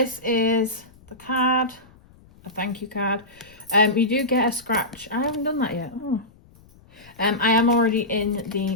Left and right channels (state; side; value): noise; left; rumble, 26 dB below the sound